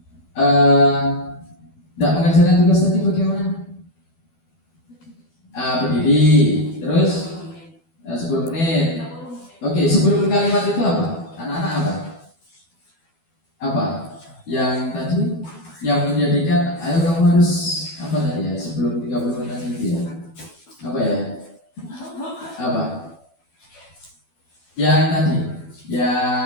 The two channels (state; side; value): late; right; 12 ms